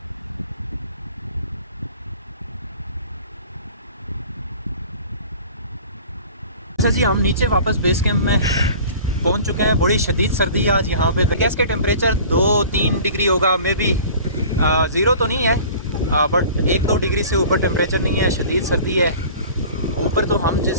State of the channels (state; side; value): inverted; both; correlation -0.43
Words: अच्छा जी, हम नीचे वापस बेस कैंप में पहुंच चुके हैं। बड़ी शदीद सर्दी है आज यहाँ पे। गैस के टेम्परेचर 2-3 डिग्री होगा, मे बी ज़ीरो तो नहीं है, बट 1-2 डिग्री से ऊपर टेम्परेचर नहीं है। शदीद सर्दी है। ऊपर तो हम